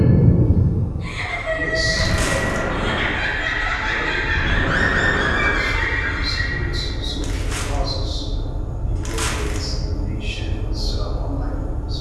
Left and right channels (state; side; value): identical; both; correlation 1.00